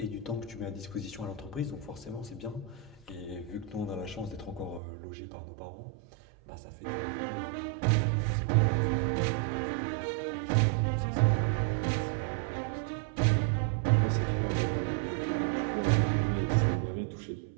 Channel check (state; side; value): drops out; left; at 4.8 s